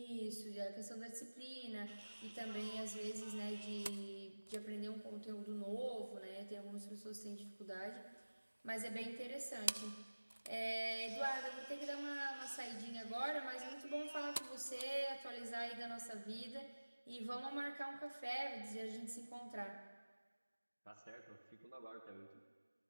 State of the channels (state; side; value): inverted; both; correlation -1.00